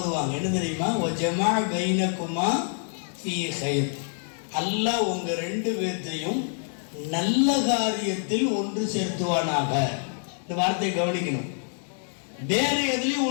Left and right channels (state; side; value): silent; right; 59 dB below the other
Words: என்ன தெரியுமா? வஜமா பைனக்குமா ஃபீ கைர். அல்லாஹ் உங்க 2 பேர்த்தையும் நல்ல காரியத்தில் ஒன்று சேர்த்துவானாக. இந்த வார்த்தையை கவனிக்கணும். வேற எதுலயும்